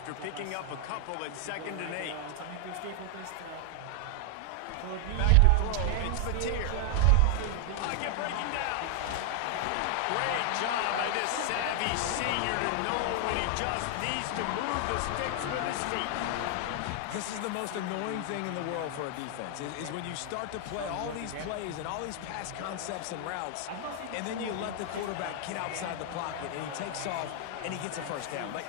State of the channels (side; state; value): both; different; correlation 0.00